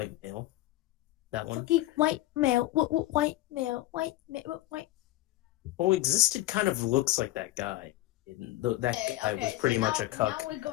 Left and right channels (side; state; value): right; quieter; 16.7 dB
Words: male. That one. Fucking white male. White male. White male. White. Well, Existed kind of looks like that guy. That guy was pretty much a cuck.